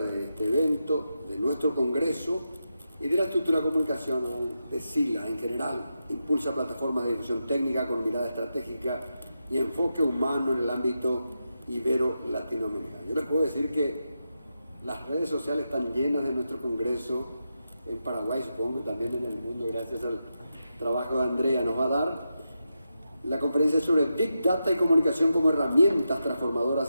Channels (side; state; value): both; inverted; correlation -0.88